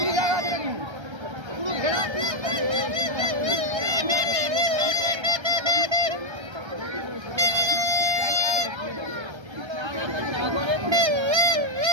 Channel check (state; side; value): late; left; 1.3 ms